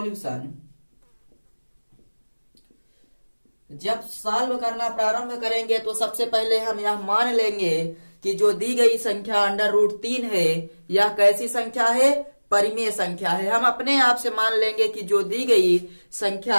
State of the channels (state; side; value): inverted; both; correlation -1.00